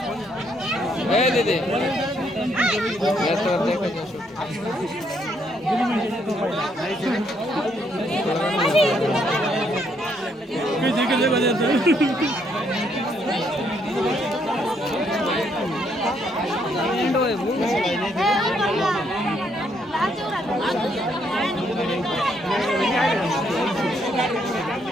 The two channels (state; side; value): normal; both; correlation 0.72